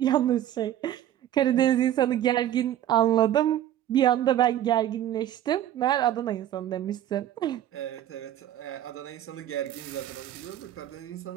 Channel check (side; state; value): left; quieter; 11.9 dB